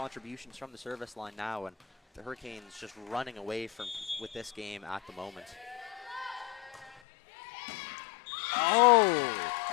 from the service line now, and the Hurricanes just running away with this game at the moment. Oh!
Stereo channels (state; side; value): drops out; right; at 7.0 s